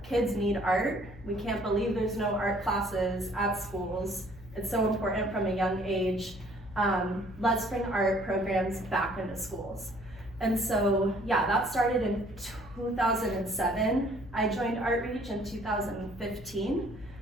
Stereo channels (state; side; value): noise; left; hum, 18 dB below the sound